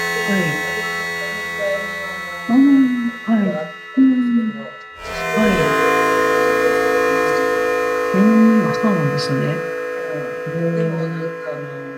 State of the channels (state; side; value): identical; both; correlation 1.00